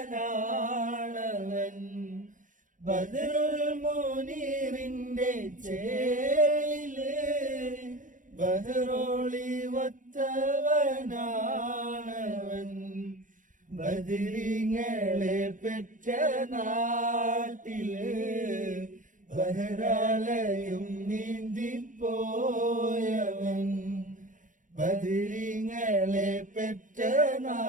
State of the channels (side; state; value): left; late; 0.38 ms